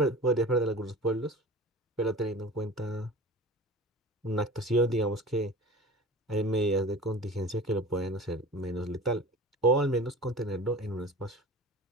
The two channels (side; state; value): both; normal; correlation 0.38